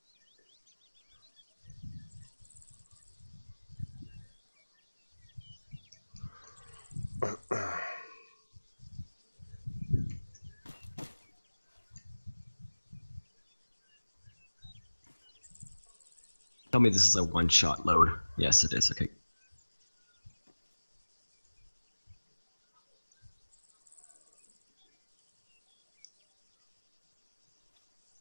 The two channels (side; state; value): both; inverted; correlation -1.00